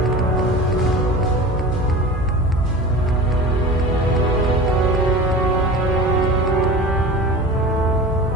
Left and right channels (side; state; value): both; normal; correlation 0.34